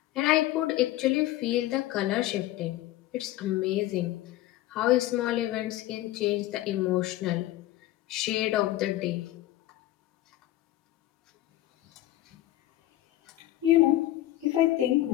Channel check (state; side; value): quieter; right; 15.4 dB